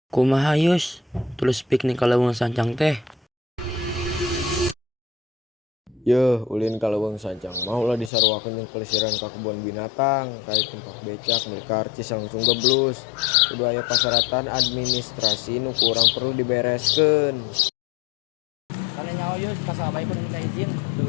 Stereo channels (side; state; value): right; drops out; at 8.1 s